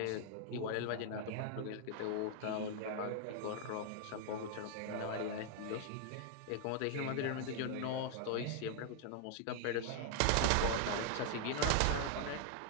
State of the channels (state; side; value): different; both; correlation 0.00